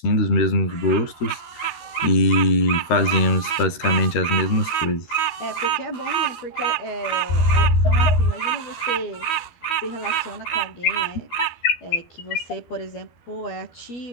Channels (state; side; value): late; right; 12 ms